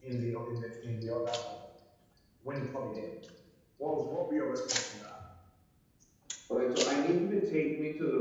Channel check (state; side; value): identical; both; correlation 1.00